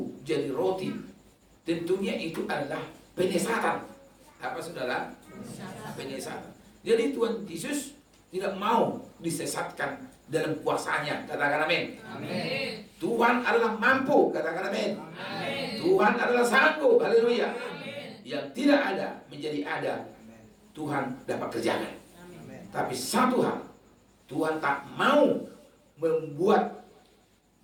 jadi roti, tentunya itu adalah penyesatan. Apa saudara? Penyesatan. Jadi Tuhan Yesus tidak mau disesatkan dalam kuasanya. Katakan amin. Amin. Tuhan adalah mampu. Katakan amin. Amin. Tuhan adalah sanggup. Haleluya. Yang tidak ada menjadi ada, Tuhan dapat kerjakan. Amin. Tapi satu hal, Tuhan tak mau membuat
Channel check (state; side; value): identical; both; correlation 1.00